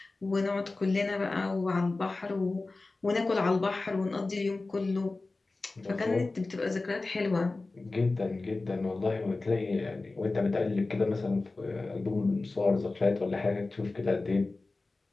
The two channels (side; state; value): right; quieter; 3.4 dB